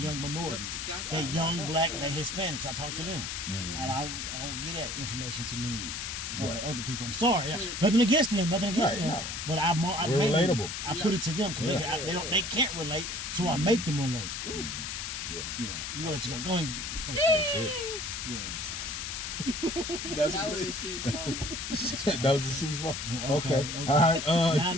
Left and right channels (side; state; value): left; noise; hiss, 5 dB below the sound